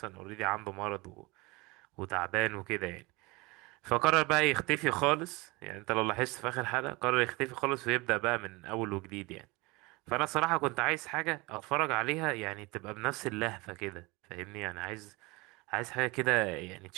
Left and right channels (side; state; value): left; quieter; 24.5 dB